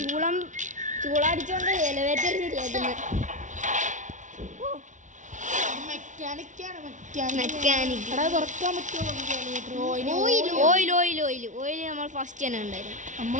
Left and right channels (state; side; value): late; left; 0.36 ms